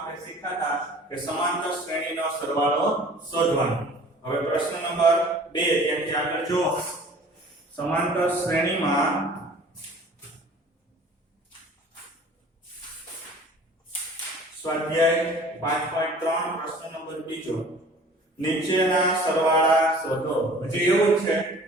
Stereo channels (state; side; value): normal; both; correlation 0.48